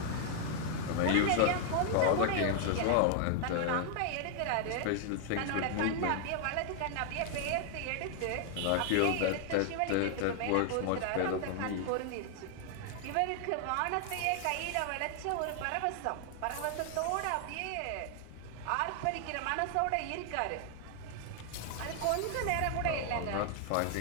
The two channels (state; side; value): different; both; correlation 0.00